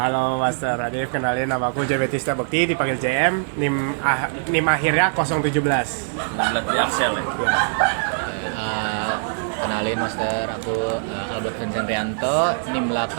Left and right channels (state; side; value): silent; left; digital silence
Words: Master Arif, kenalin nama aku Jametista Bekti, dipanggil JM, NIM akhirnya 017. 19 dari Axel ya? Ya. Kenalin, Master, aku Albert Vincent Rianto, NIM